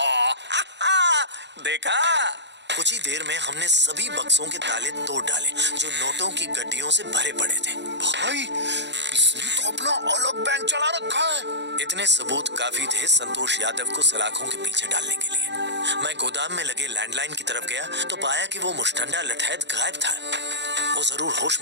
देखा? कुछ ही देर में हमने सभी बक्सों के ताले तोड़ डाले जो नोटों की गड्डियों से भरे पड़े थे। भाई, इसने तो अपना अलग बैंक चला रखा है। इतने सबूत काफी थे संतोष यादव को सलाखों के पीछे डालने के लिए। मैं गोदाम में लगे लैंडलाइन की तरफ गया तो पाया कि वो मुश्तंडा लठैत गायब था। वो जरूर होश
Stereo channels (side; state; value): left; late; 0.51 ms